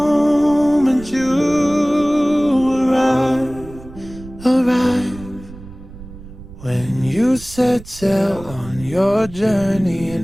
you arrive. When you set sail on your journey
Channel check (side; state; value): right; noise; rumble, 17 dB below the sound